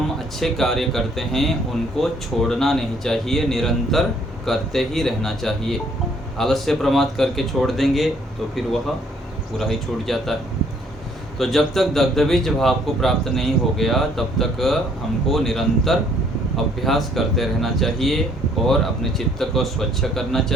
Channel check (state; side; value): normal; both; correlation 0.63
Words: अच्छे कार्य करते हैं उनको छोड़ना नहीं चाहिए, निरंतर करते ही रहना चाहिए। आलस्य प्रमाद करके छोड़ देंगे तो फिर वह पूरा ही छूट जाता है। तो जब तक दग्धबीज भाव को प्राप्त नहीं हो गया, तब तक हमको निरंतर अभ्यास करते रहना चाहिए और अपने चित्त को स्वच्छ करना